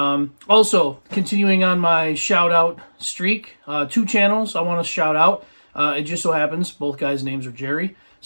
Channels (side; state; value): both; inverted; correlation -1.00